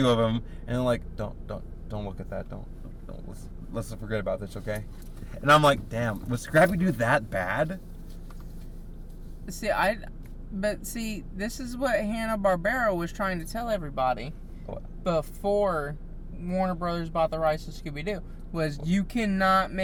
of him, and they're like, don't look at that, don't let's forget about this, okay? And I'm like, damn, was Scrappy Doo that bad? See, this is what Hanna-Barbera was trying to tell everybody before Warner Brothers bought the rights to Scooby-Doo. Was you cannot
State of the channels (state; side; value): identical; both; correlation 1.00